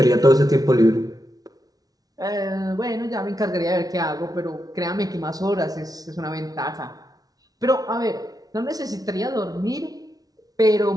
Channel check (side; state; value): left; late; 0.18 ms